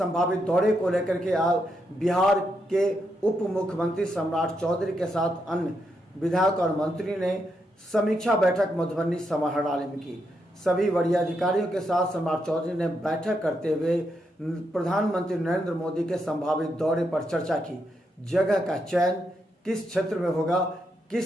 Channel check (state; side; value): normal; both; correlation 0.81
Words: दौरे को लेकर के बिहार के उप मुख्यमंत्री सम्राट चौधरी के साथ अन्य विधायक और मंत्री ने समीक्षा बैठक मधुबनी समाहरणालय में की। सभी वरीय अधिकारियों के साथ सम्राट चौधरी ने बैठक करते हुए प्रधानमंत्री नरेंद्र मोदी के संभावित दौरे पर चर्चा की। जगह का चयन किस क्षेत्र में होगा, किस